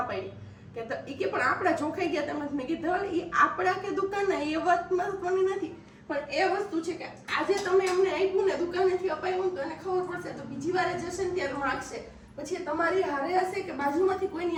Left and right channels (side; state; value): both; identical; correlation 1.00